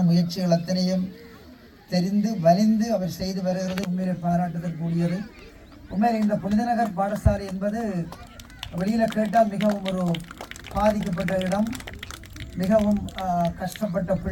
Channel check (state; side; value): identical; both; correlation 1.00